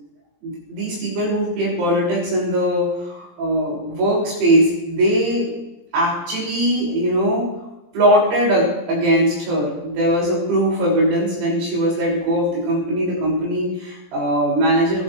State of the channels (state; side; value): late; left; 17 ms